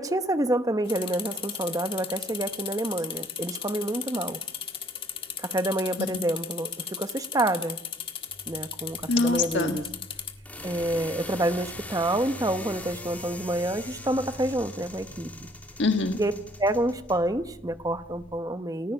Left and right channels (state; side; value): normal; both; correlation 0.60